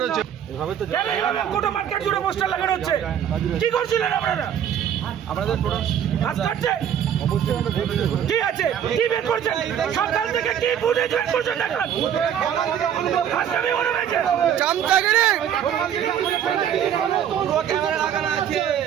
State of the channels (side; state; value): left; quieter; 9.3 dB